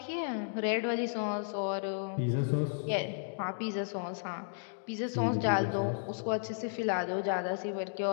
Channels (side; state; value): right; silent; digital silence